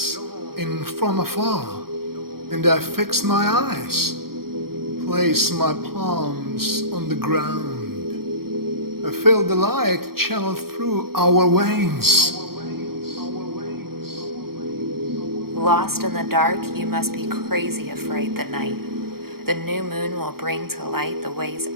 in from afar, and I fix my eyes, place my palms on the ground. I feel the light channel through our veins. Lost in the dark, you must be crazy afraid the night. The new moon will bring to light the ways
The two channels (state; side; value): late; left; 0.94 ms